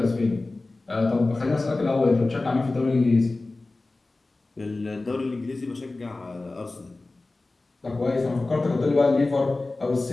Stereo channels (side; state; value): right; quieter; 3.2 dB